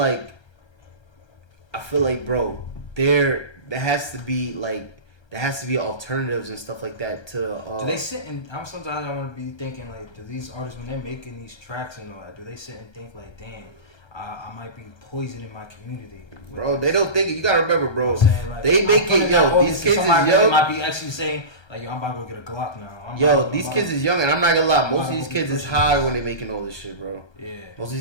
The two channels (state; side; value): late; right; 1.3 ms